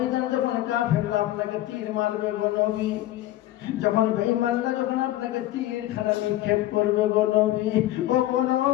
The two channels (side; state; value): right; quieter; 15.0 dB